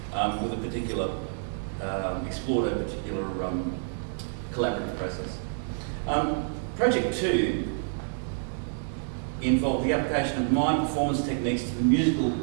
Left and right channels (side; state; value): left; silent; digital silence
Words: with a particular, explored a particular collaborative process. Project 2 involved the application of mime performance techniques to the musical